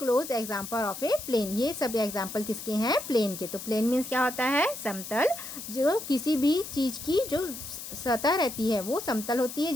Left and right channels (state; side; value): noise; left; hiss, 10 dB below the sound